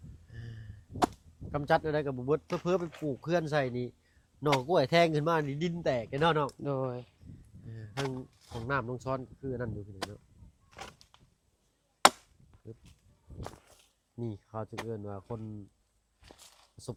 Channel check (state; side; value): identical; both; correlation 1.00